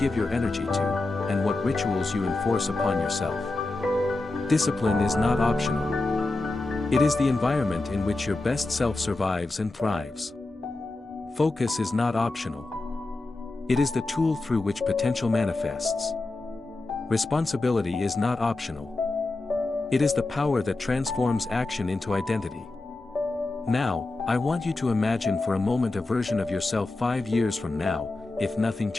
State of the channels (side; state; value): right; quieter; 3.1 dB